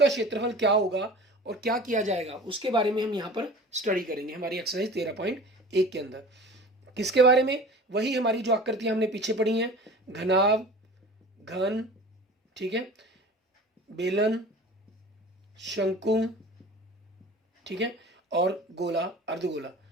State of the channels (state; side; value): normal; both; correlation 0.40